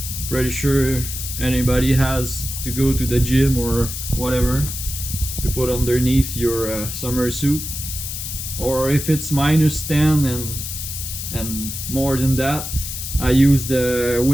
pretty sure anybody has to go to the gym or whatever to put underneath your summer suit. Or if it's -10 and more than that, I use the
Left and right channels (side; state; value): left; noise; hiss, 6 dB below the sound